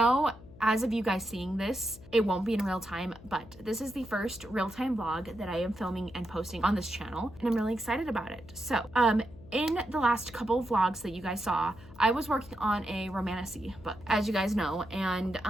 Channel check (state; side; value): noise; left; hum, 19 dB below the sound